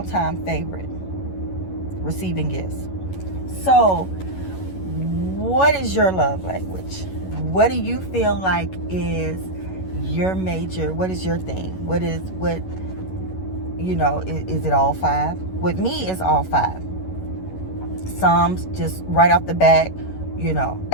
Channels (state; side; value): late; right; 11 ms